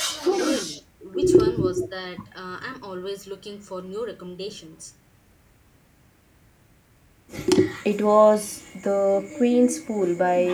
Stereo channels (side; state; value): both; identical; correlation 1.00